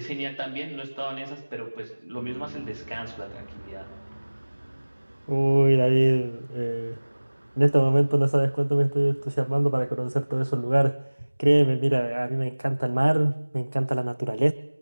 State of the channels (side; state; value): both; inverted; correlation -1.00